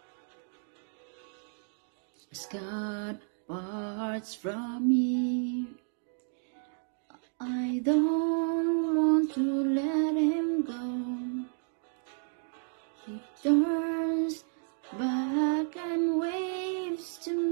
As God parts from me, I don't want to let Him go. He turns back and waves to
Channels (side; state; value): left; silent; 57 dB below the other